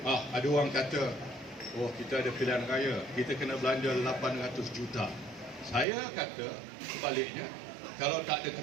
Ada orang kata, oh kita ada pilihan raya, kita kena belanja 800 juta. Saya kata sebaliknya, kalau tak ada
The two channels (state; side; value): drops out; left; at 5.9 s